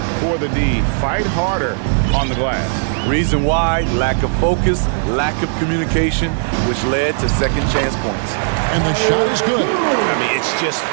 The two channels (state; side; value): silent; left; 64 dB below the other